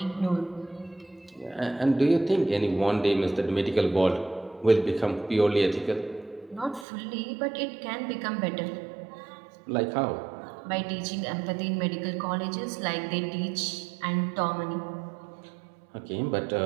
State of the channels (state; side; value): drops out; left; at 6.9 s